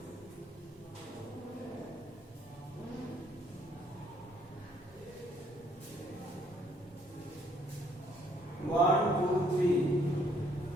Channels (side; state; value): both; normal; correlation 0.66